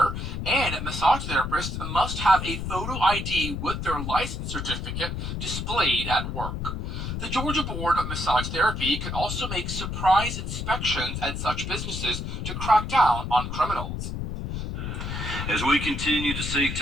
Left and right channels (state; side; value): noise; left; rumble, 4 dB below the sound